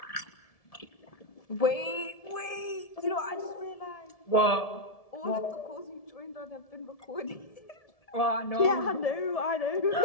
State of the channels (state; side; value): late; right; 1.7 ms